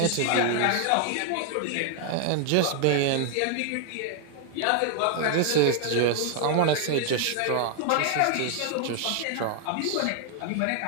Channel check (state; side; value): different; both; correlation 0.00